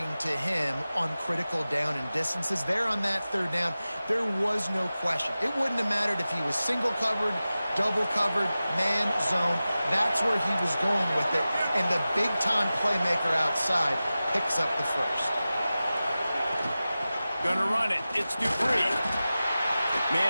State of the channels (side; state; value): both; inverted; correlation -0.95